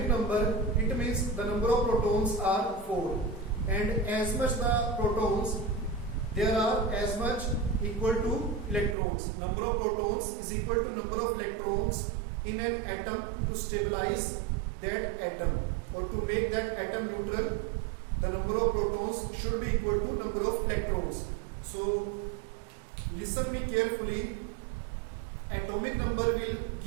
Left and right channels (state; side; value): drops out; left; at 9.0 s